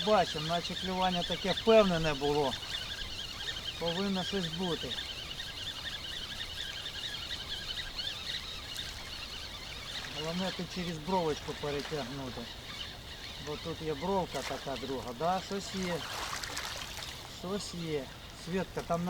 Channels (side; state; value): both; identical; correlation 1.00